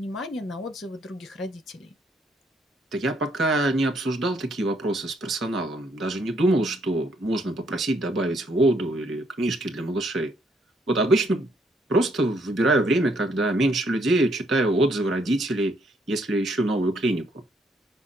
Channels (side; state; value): both; normal; correlation 0.70